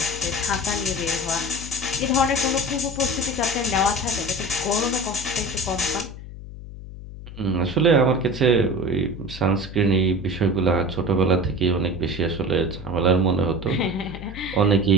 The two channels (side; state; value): left; noise; hum, 13 dB below the sound